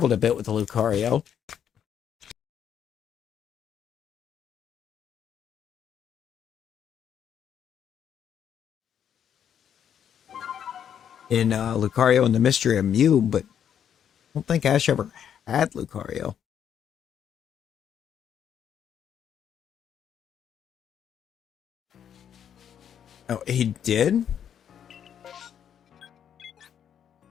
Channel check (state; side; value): quieter; right; 8.9 dB